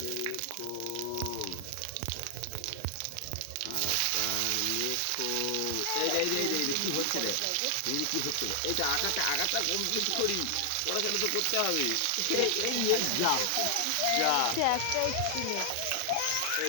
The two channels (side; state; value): both; different; correlation 0.00